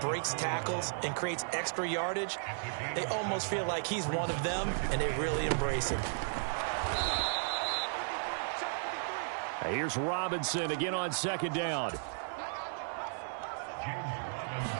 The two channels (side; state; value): left; silent; digital silence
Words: tackles and creates extra yardage, they almost feel like he's one of them, and they really embrace him. Here's Robinson again on second down.